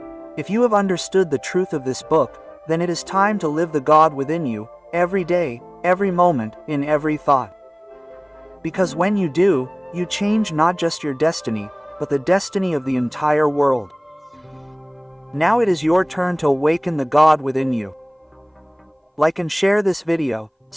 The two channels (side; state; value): both; identical; correlation 1.00